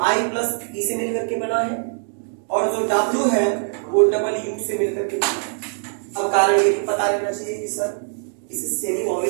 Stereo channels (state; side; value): silent; left; 59 dB below the other